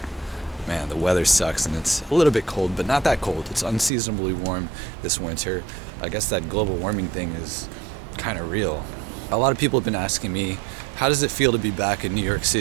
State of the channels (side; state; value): left; drops out; at 3.9 s